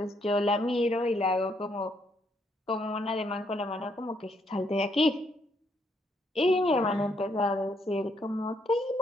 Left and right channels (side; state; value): both; normal; correlation 0.73